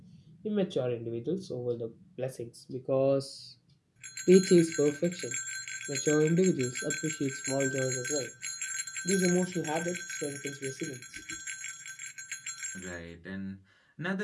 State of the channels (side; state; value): both; identical; correlation 1.00